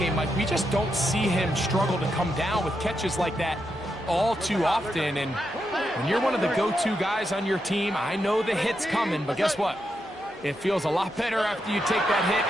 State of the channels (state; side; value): normal; both; correlation 0.84